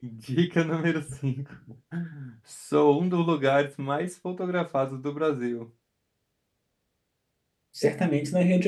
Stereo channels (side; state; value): both; identical; correlation 1.00